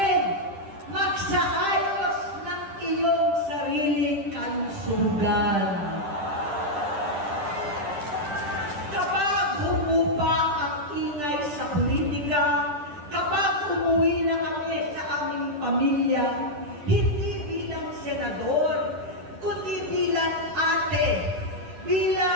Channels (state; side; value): late; left; 10 ms